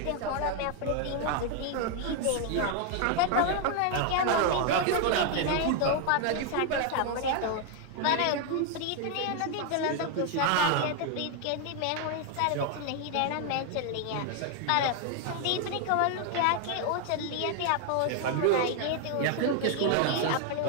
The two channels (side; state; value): both; different; correlation 0.00